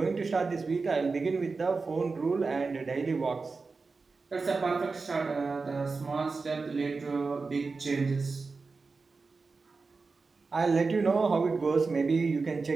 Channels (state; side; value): quieter; left; 4.2 dB